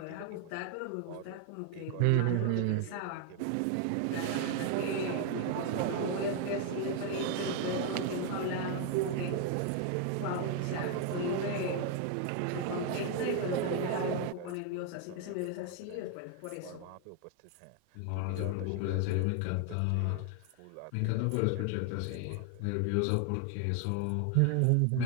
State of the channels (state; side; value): different; both; correlation 0.00